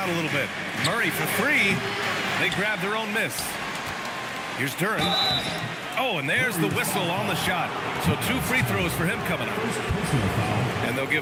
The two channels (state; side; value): identical; both; correlation 1.00